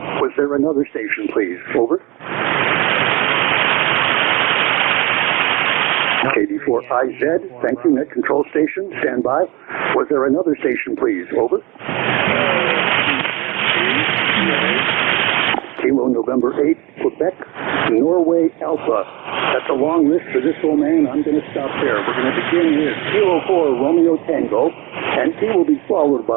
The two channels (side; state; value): left; quieter; 22.2 dB